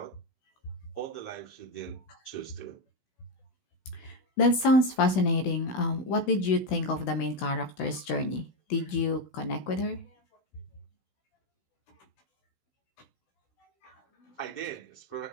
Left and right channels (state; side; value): late; right; 16 ms